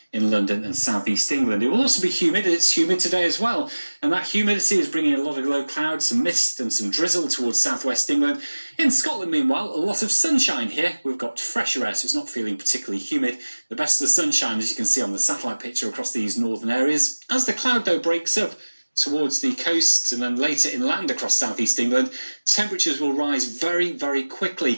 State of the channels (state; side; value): inverted; both; correlation -1.00